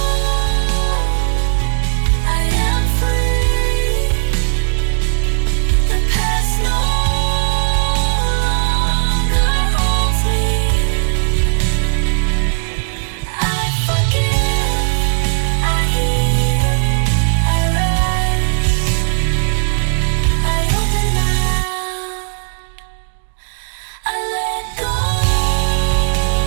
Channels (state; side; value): silent; left; digital silence